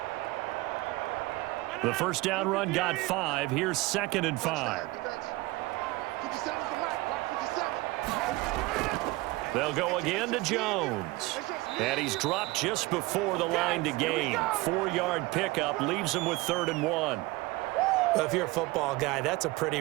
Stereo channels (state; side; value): quieter; left; 21.0 dB